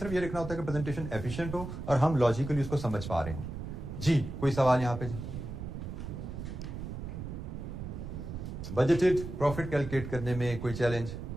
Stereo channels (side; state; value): right; noise; rumble, 7 dB below the sound